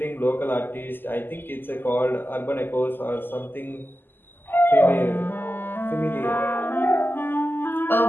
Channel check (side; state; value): right; late; 0.095 ms